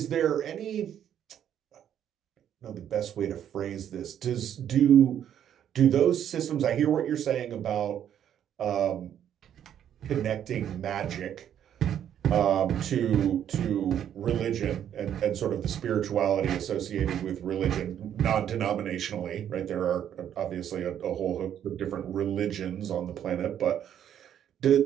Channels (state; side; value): quieter; left; 9.9 dB